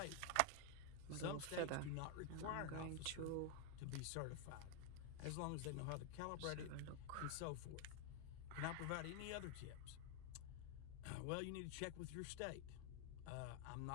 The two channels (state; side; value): different; both; correlation 0.01